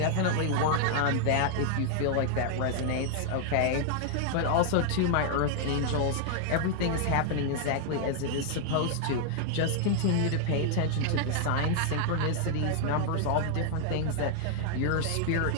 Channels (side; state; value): both; different; correlation 0.00